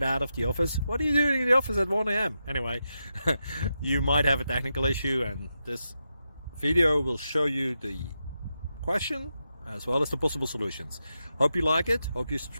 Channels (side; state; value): both; inverted; correlation -0.87